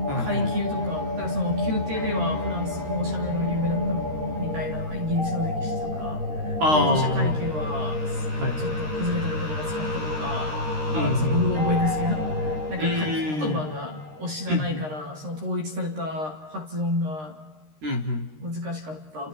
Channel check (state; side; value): late; left; 13 ms